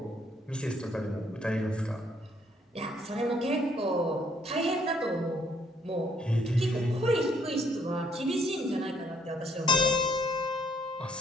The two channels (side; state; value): both; normal; correlation 0.67